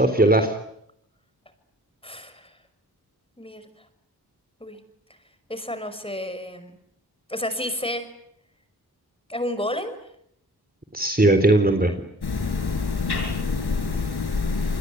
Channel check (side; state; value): both; normal; correlation 0.51